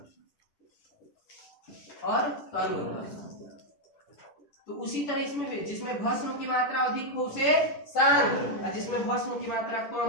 और तनु। तो उसी तरह इसमें भी जिसमें भस्म की मात्रा अधिक हो उसे सांद्र और जिसमें भस्म की मात्रा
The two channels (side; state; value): right; late; 10 ms